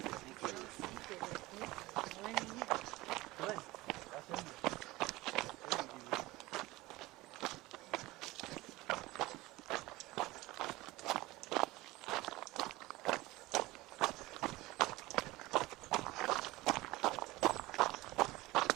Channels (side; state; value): left; quieter; 19.7 dB